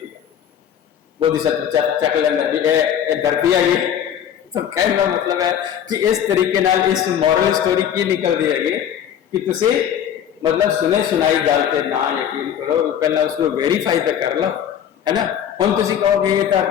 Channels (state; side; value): quieter; right; 9.4 dB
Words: बोधिसत्व चक लेना भी धरती है ये। तो कहने का मतलब है कि इस तरीके नाल इस मॉरल स्टोरी की निकलती है कि तुसी मतलब सुने सुनाई गल पे ना यकीन करो, पहला उसको वेरीफाई तो कर लो है ना। हम तुसी कहोगे ये तो